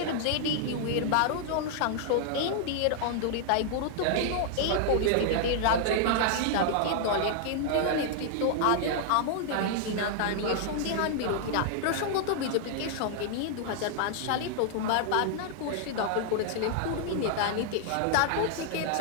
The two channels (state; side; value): different; both; correlation -0.01